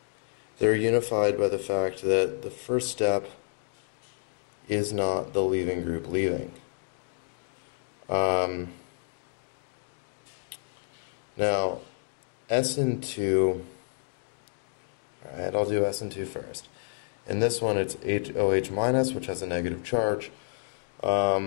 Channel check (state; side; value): silent; right; digital silence